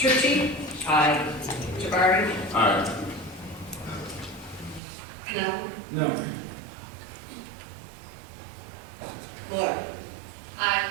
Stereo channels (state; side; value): drops out; left; at 4.8 s